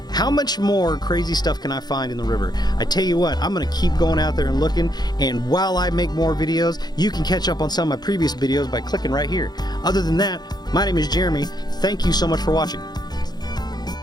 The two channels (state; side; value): late; right; 0.20 ms